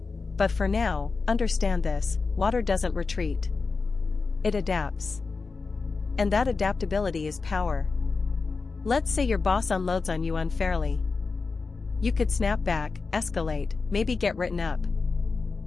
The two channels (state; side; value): quieter; right; 4.3 dB